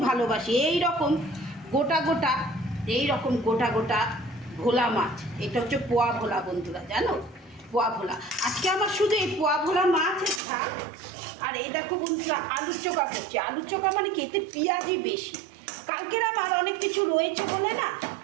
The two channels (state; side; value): drops out; left; at 10.4 s